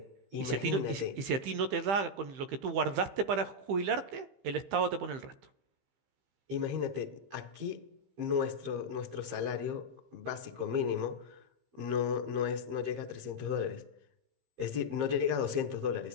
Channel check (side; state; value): left; late; 15 ms